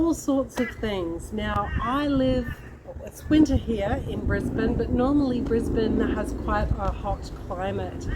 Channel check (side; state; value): both; identical; correlation 1.00